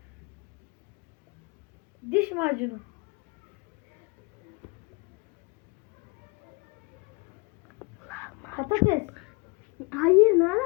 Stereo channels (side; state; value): right; quieter; 29.9 dB